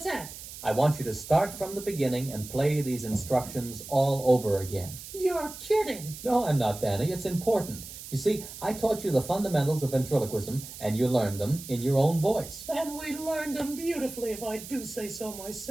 that? I want you to start from the beginning and play these instructions all over again. You're kidding. No, I'm not, Danny. It's important. You see, I taught you the fundamentals of ventriloquism, and you learned them in your own voice. And we learned them beautifully, if I do say so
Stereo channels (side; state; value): right; noise; hiss, 13 dB below the sound